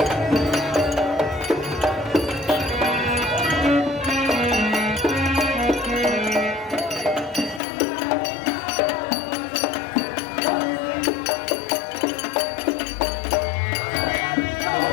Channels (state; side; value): drops out; right; at 7.6 s